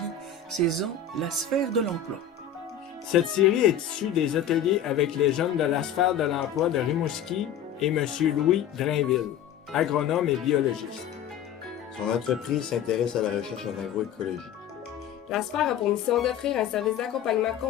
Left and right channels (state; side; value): quieter; right; 8.2 dB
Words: saison La sphère de l'emploi ». Cette série est issue des ateliers avec les jeunes de la sphère de l'emploi de Rimouski et M. Louis Drainville, agronome et biologiste. Son entreprise s'intéresse à la recherche en agroécologie. La sphère a pour mission d'offrir un service d'accompagnement